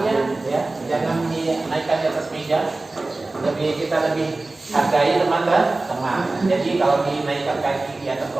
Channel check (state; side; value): quieter; left; 3.2 dB